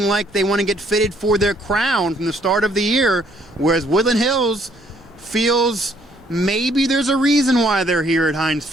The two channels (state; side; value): noise; right; rumble, 28 dB below the sound